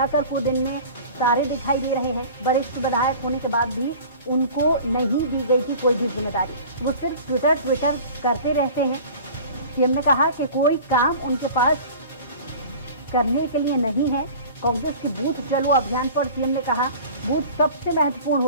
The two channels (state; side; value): inverted; both; correlation -0.41